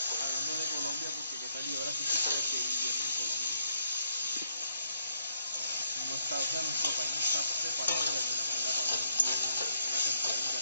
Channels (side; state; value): both; inverted; correlation -0.72